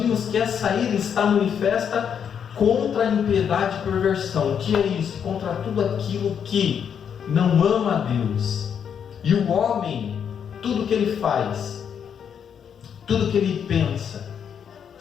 que essa ira está manifesta contra a impiedade e perversão. O que é isso? Contra tudo aquilo que não ama a Deus. E o homem, tudo que ele faz, tudo que ele pensa,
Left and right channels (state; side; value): quieter; right; 7.8 dB